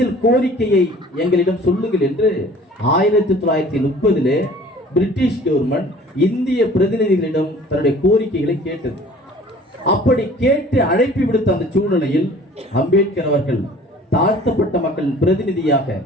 கோரிக்கையை எங்களிடம் சொல்லுங்கள் என்று 1930 பிரிட்டிஷ் கவர்மெண்ட் இந்திய பிரதிநிதிகளிடம் தன்னுடைய கோரிக்கைகளை கேட்டது. அப்படி கேட்டு அழைப்பு விடுத்த அந்த சூழ்நிலையில் அம்பேத்கர் அவர்கள் தாழ்த்தப்பட்ட மக்களின் பிரதிநிதியாக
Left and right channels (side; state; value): both; normal; correlation 0.49